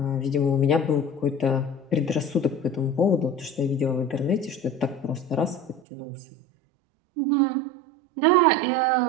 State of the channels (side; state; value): left; drops out; at 5.8 s